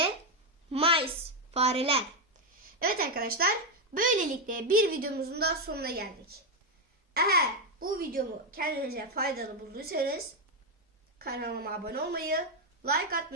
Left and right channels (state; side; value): normal; both; correlation 0.05